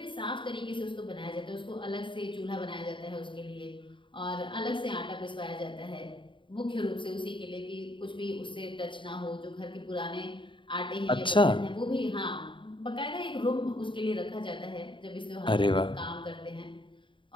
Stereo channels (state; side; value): late; right; 0.24 ms